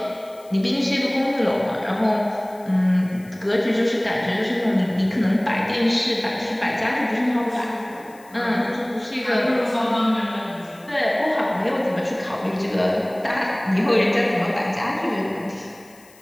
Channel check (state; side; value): noise; left; hiss, 26 dB below the sound